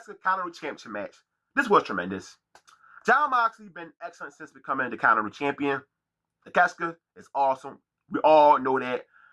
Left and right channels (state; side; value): identical; both; correlation 1.00